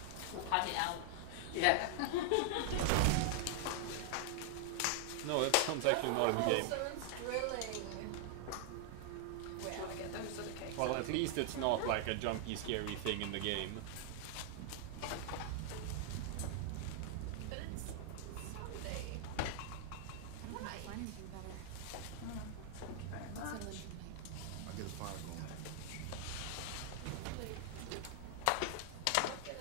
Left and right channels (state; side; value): different; both; correlation 0.00